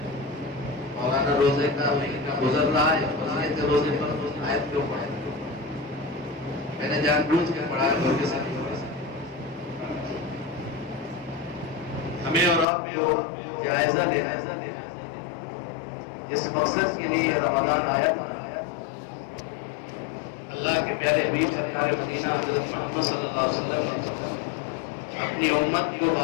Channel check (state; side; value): drops out; right; at 12.7 s